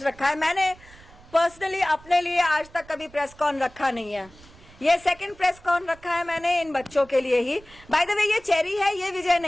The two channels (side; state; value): right; noise; rumble, 23 dB below the sound